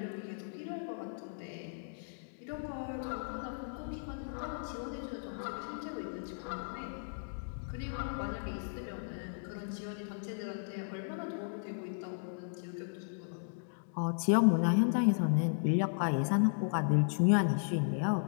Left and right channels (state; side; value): silent; right; digital silence